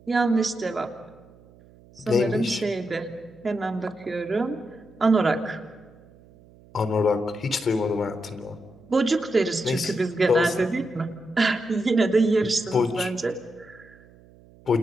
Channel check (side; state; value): right; noise; hum, 25 dB below the sound